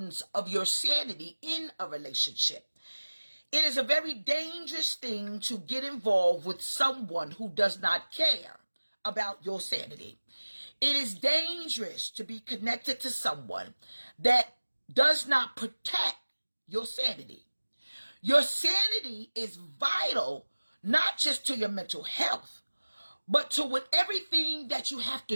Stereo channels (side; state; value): both; inverted; correlation -1.00